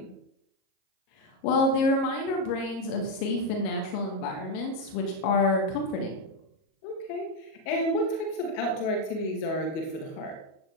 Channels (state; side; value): late; right; 38 ms